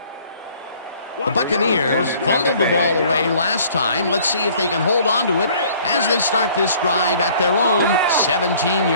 The Buccaneers fumbled the ball away last time. Let's see if they can hold on to it as they start this drive at their own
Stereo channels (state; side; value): inverted; both; correlation -0.55